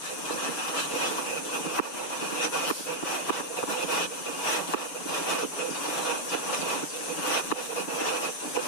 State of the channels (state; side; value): late; right; 6.8 ms